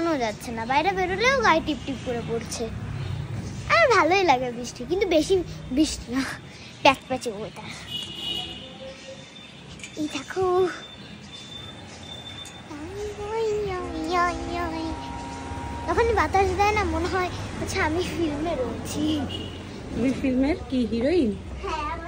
যাচ্ছে না, বাইরে বেরোলেও গায়ে টিপ টিপ করে পড়ছে। আর ভালোই লাগে বৃষ্টি, কিন্তু বেশি বৃষ্টি না, প্যাচপ্যাচে ওয়েদার। এই দেখো যখন বাতাস দেয় না, মনে হয় আচ্ছা আমি ফিল্মে রয়েছি। তুমি ফিল্মের কি হিরোইন? হ্যাঁ,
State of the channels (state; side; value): identical; both; correlation 1.00